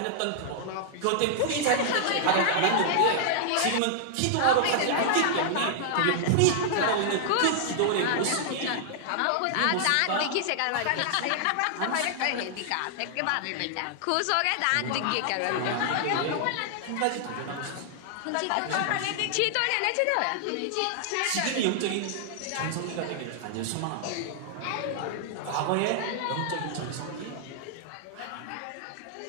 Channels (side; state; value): both; different; correlation -0.01